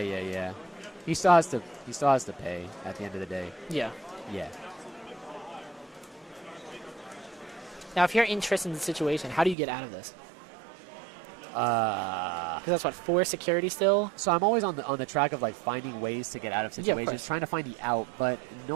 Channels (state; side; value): drops out; left; at 9.6 s